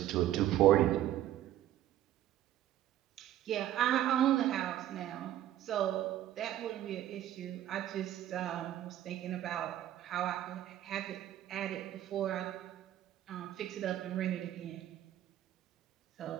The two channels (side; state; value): left; quieter; 12.6 dB